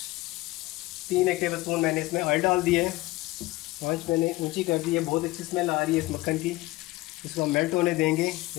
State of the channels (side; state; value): right; quieter; 19.3 dB